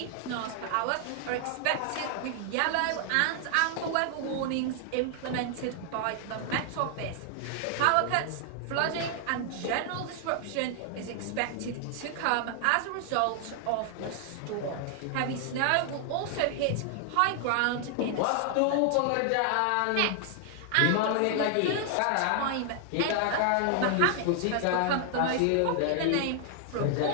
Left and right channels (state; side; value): different; both; correlation 0.00